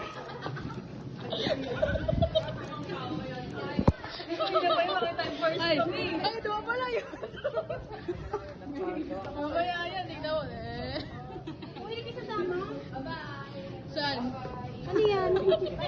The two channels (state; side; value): identical; both; correlation 1.00